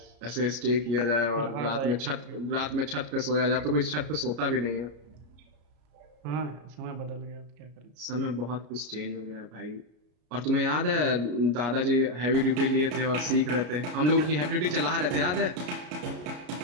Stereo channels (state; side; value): late; left; 33 ms